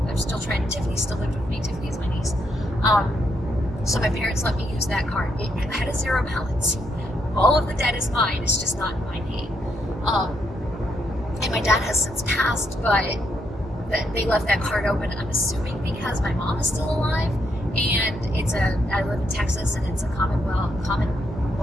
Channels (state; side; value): normal; both; correlation 0.77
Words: Tiffany still lived with me. Tiffany is my niece. So my parents let me use that card. It had a $0 balance. All of the debt is mine. It's just not in my name. And my dad has since passed, but they left that card open, I'm assuming because my mom is still alive, and I live in Texas, and it's a common